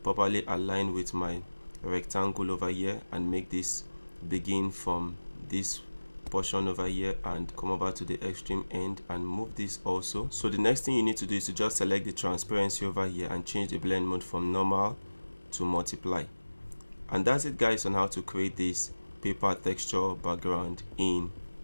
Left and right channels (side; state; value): both; inverted; correlation -1.00